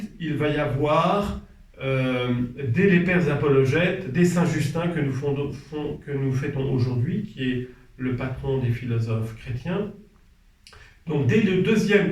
il va y avoir, dès les pères apologètes, dès Saint Justin que nous fêtons aujourd'hui, qui est le patron des philosophes chrétiens. Donc dès le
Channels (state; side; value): identical; both; correlation 1.00